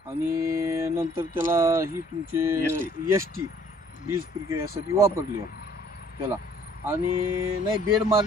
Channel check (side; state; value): both; normal; correlation 0.58